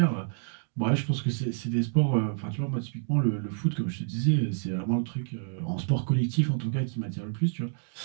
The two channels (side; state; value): left; silent; digital silence